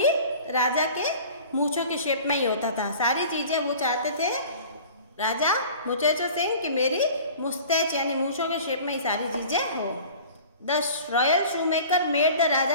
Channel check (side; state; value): both; inverted; correlation -0.43